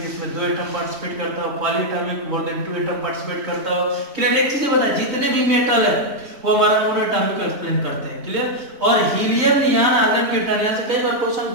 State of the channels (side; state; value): left; late; 3.8 ms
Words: जिसमें 2 एटम पार्टिसिपेट करता हो, poly atomic more than 2 atom participate करता हो। क्लियर। एक चीज बताया, जितने भी मेटल है वो हमारा मोनो एटॉमिक को एक्सप्लेन करते हैं। क्लियर। और हीलियम, नियॉन, आर्गन, क्रिप्टॉन, यहाँ से कई बार क्वेश्चन